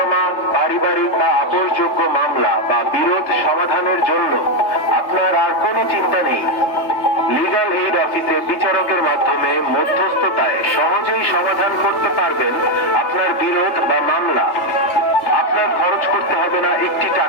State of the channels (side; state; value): right; late; 3.3 ms